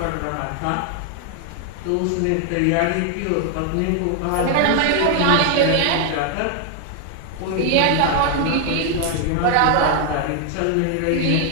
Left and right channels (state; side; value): different; both; correlation 0.00